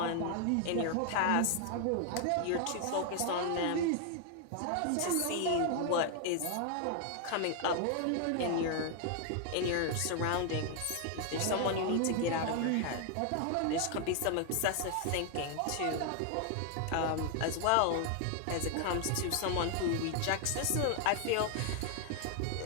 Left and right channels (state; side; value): different; both; correlation 0.00